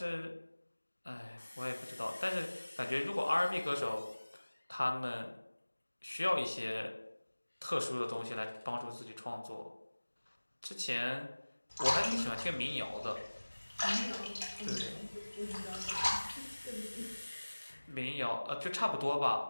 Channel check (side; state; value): both; inverted; correlation -1.00